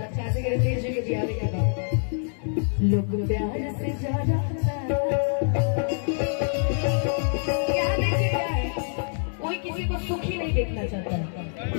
लोग प्यार से ज्यादा क्या देखिए क्या है, कोई किसी को सुखी नहीं देखना चाहता,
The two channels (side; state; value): right; silent; digital silence